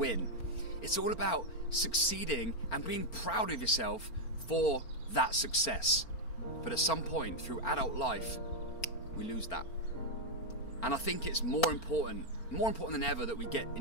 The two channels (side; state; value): right; late; 4.4 ms